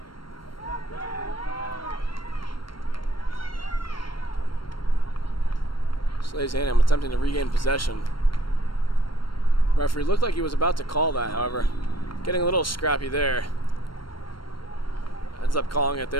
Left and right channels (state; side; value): late; right; 0.72 ms